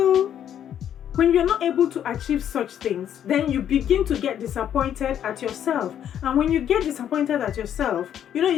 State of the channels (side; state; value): right; quieter; 9.8 dB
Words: when you're not able to achieve such things, then you begin to get disappointed at yourself. And when you get disappointed at yourself,